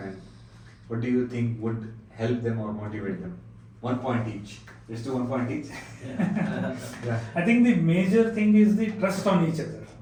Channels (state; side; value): identical; both; correlation 1.00